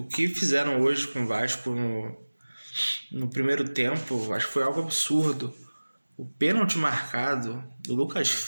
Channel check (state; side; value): inverted; both; correlation -1.00